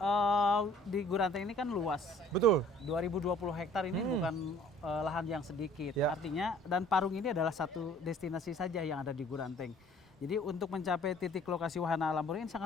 di Guranteng ini kan luas. Betul. 2020 hektar ini bukan lahan yang sedikit. Ya. Artinya dan Parung ini adalah satu destinasi saja yang ada di Guranteng. Jadi untuk mencapai titik lokasi Wahana Alam Parung ini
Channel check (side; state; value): both; normal; correlation 0.54